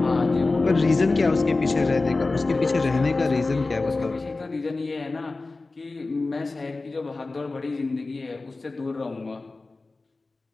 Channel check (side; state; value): right; quieter; 3.5 dB